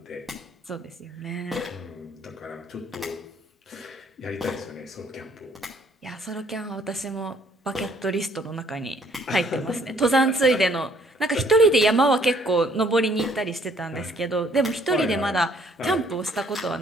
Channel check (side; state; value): both; normal; correlation 0.63